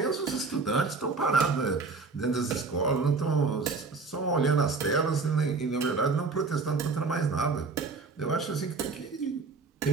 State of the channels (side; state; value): left; quieter; 4.2 dB